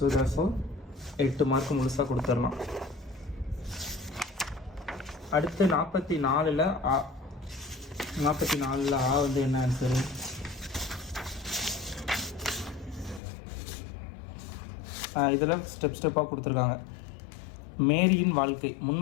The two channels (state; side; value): drops out; right; at 13.2 s